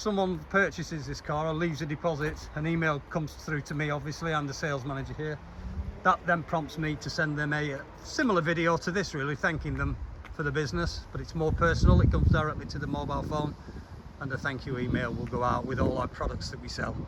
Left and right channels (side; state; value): both; identical; correlation 1.00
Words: purchases this car or leaves a deposit, an email comes through to me, obviously. I'm the sales manager here. That then prompts me to send them a similar video to this, really, thanking them for the business, but it's more personal. It comes directly to the mobile phone, and a thank you email will go out with all our products that we sell.